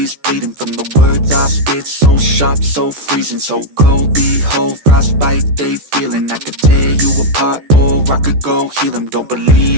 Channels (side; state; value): left; late; 14 ms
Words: bleeding from the words I spit. So sharp, so freezing, so cold. Behold, frostbite they feeling. I could tear you apart or I could go heal them. Don't